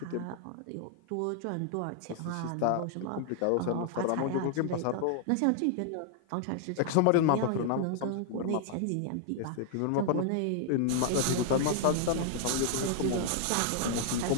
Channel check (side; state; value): both; different; correlation 0.00